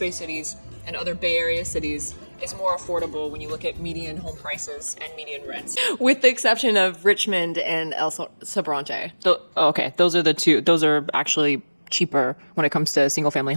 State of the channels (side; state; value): both; inverted; correlation -1.00